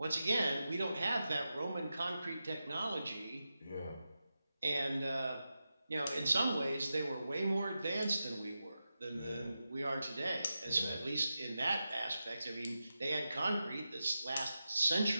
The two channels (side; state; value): both; inverted; correlation -0.91